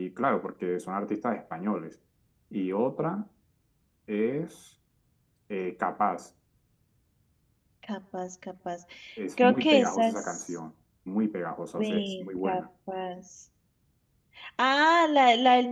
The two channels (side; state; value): both; identical; correlation 1.00